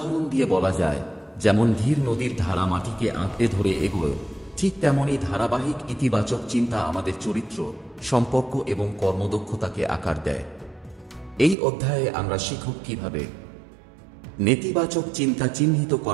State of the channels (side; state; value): left; drops out; at 11.6 s